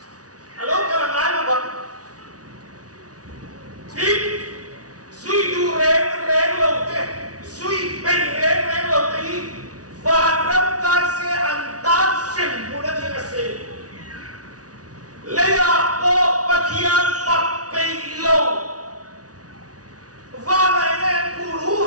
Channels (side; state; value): left; late; 0.68 ms